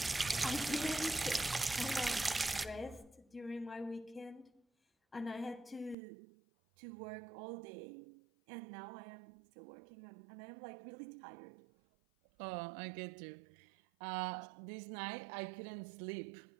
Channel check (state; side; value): drops out; left; at 6.0 s